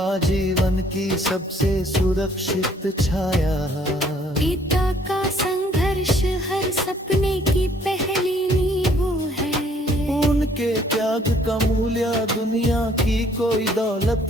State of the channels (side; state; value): both; normal; correlation 0.62